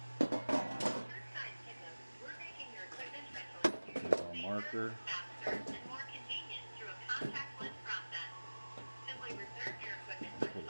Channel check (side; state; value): both; inverted; correlation -1.00